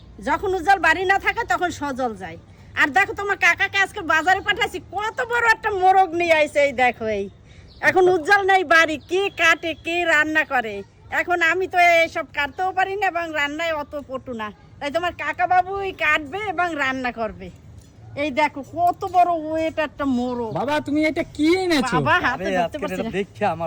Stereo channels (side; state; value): both; identical; correlation 1.00